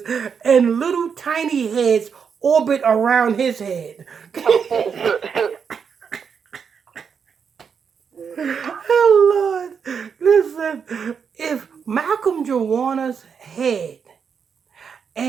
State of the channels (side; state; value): left; quieter; 6.6 dB